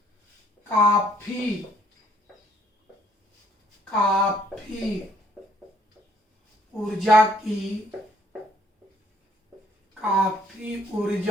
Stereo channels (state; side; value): normal; both; correlation 0.65